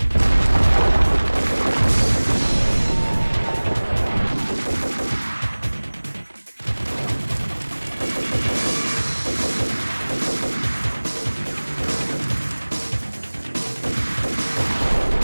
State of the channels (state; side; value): inverted; both; correlation -1.00